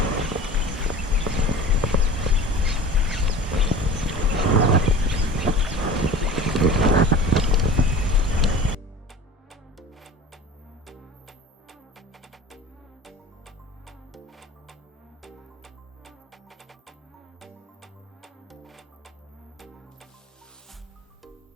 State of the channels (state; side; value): normal; both; correlation 0.39